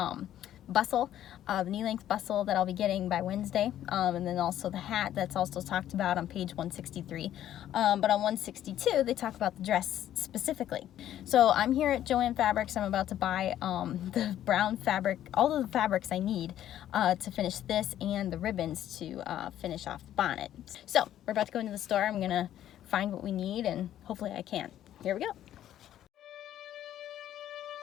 bustle, the knee-length bustle that I'll be getting by Wednesday, and then also the hat that's also talked about on page 163. But on 162, they talk about the dress specifically. So I'm here at Joann Fabrics. I'm about to buy the brown fabric, all of the fabrics I need to finish this, and the ribbons to finish off the bonnet. So we're about to go into the store. I'm gonna find what we need, and hopefully I can. Here we go.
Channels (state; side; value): quieter; right; 11.8 dB